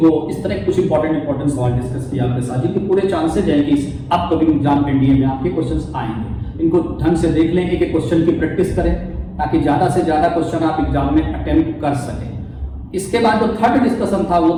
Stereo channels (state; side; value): identical; both; correlation 1.00